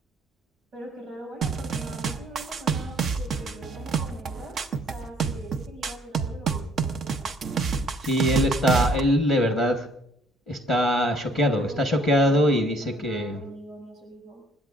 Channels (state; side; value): normal; both; correlation 0.61